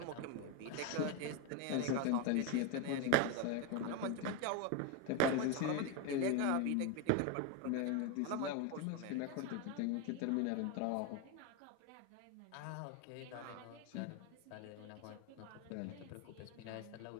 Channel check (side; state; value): both; different; correlation 0.02